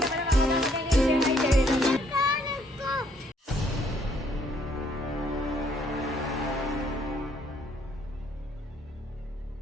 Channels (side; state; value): both; normal; correlation 0.67